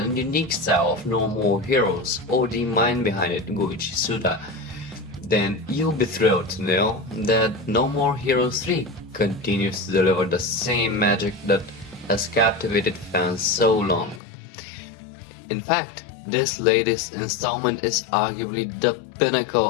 unique style of No More Heroes or the mind behind it, Goichi Suda, then you'll be thrilled to know that No More Heroes 3 continues to deliver the same magic that has captivated fans so long. In fact, this latest installment is arguably the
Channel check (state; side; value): drops out; right; at 14.2 s